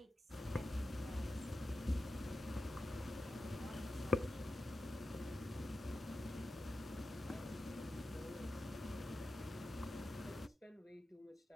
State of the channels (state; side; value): normal; both; correlation 0.92